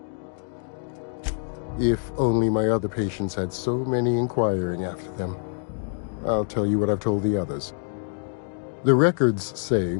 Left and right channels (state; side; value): silent; right; digital silence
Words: If only my other patients had so many inquiring after them. I'll tell you what I've told the others. The records say